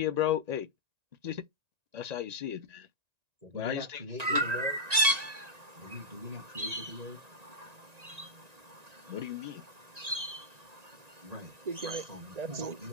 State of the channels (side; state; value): left; late; 1.9 ms